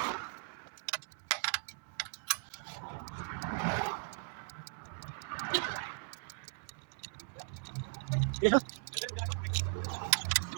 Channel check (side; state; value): left; silent; 52 dB below the other